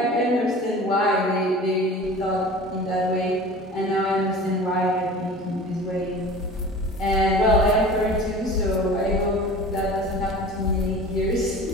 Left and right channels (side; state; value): both; normal; correlation 0.39